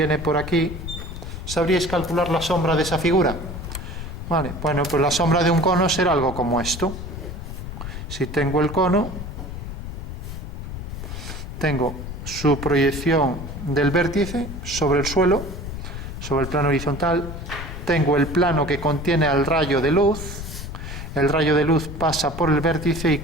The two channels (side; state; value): left; noise; rumble, 8 dB below the sound